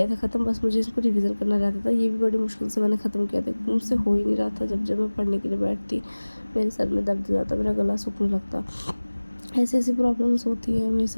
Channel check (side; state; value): both; inverted; correlation -1.00